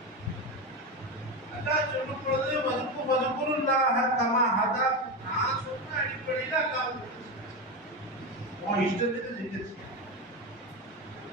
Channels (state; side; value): normal; both; correlation 0.17